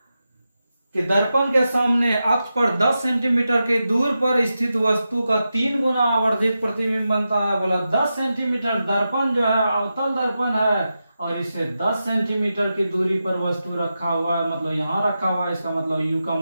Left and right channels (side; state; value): both; inverted; correlation -0.90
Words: दर्पण के सामने अक्ष पर 10 सेंटीमीटर के दूर पर स्थित वस्तु का 3 गुना आवर्धित प्रतिबिंब बनता है। बोला 10 सेंटीमीटर दर्पण जो है अवतल दर्पण है और इसे 10 सेंटीमीटर की दूरी पर वस्तु रखा हुआ है, मतलब यहाँ रखा हुआ है। इसका मतलब u का